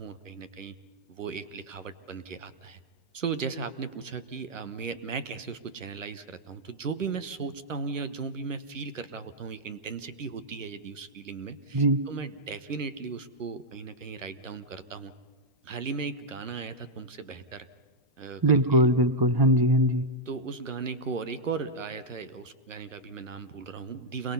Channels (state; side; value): late; left; 1.1 ms